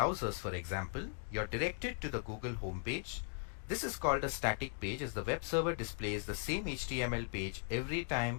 for example, you're directed to the Google homepage. This is called a static page, as the web server displays the same HTML page every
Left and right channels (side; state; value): right; silent; 52 dB below the other